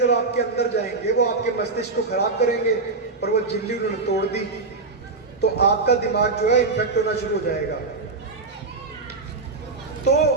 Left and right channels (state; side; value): quieter; left; 3.9 dB